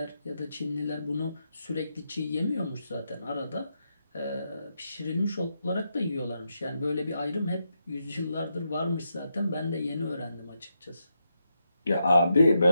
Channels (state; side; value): inverted; both; correlation -0.83